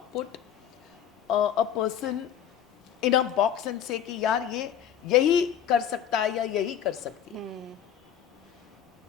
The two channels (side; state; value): right; quieter; 9.5 dB